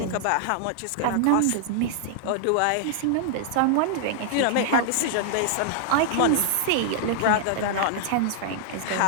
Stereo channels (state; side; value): different; both; correlation -0.01